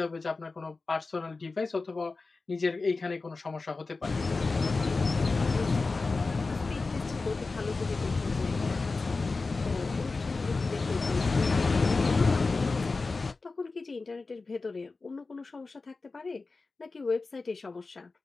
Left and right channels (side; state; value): right; quieter; 3.8 dB